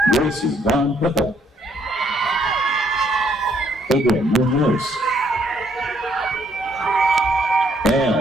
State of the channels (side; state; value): both; normal; correlation 0.69